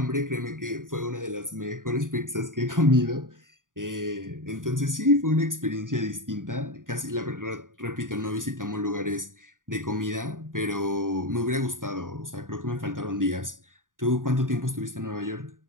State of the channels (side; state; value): left; late; 0.89 ms